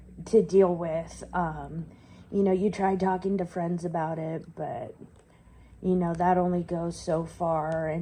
to deal with. You try talking to friends about it, but, that only goes so far.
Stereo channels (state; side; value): identical; both; correlation 1.00